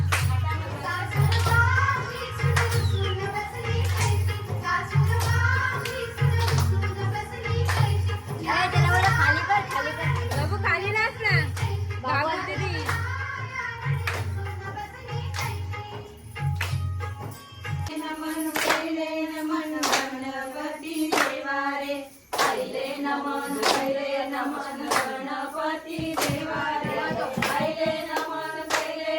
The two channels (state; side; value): identical; both; correlation 1.00